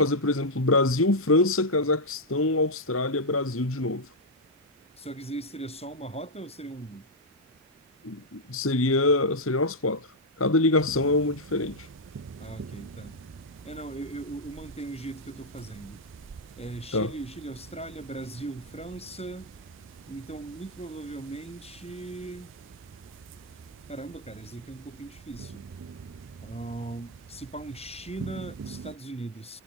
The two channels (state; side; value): normal; both; correlation -0.02